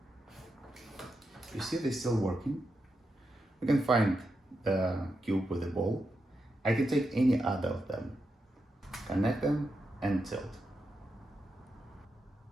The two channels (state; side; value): normal; both; correlation 0.86